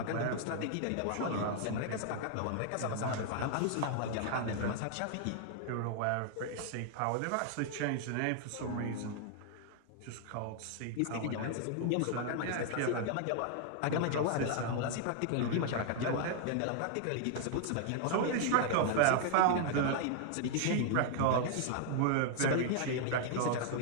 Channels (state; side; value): different; both; correlation 0.00